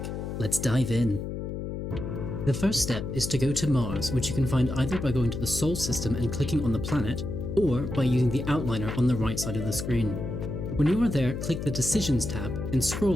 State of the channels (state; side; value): noise; left; hum, 5 dB below the sound